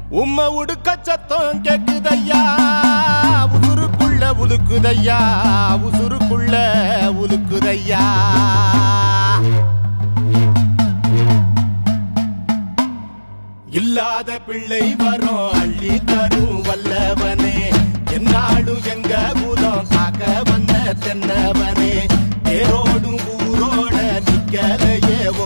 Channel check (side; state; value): both; inverted; correlation -1.00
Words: உம்ம உடுக்க சத்தம் கேக்குதையா உசுருக்குள்ள உலுக்குதையா உசுருக்குள்ள உலுக்குதையா இல்லாத பிள்ளை வரும் அள்ளி தரும் வல்லவனே என்னாலும் எங்க குலம் காக்க வந்த தென்னவனே பேரோடும் ஊரோட நிக்கலையே